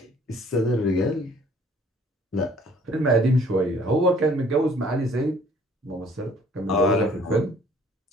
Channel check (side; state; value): both; normal; correlation 0.57